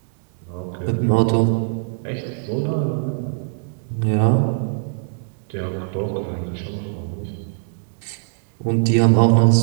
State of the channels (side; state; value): left; silent; digital silence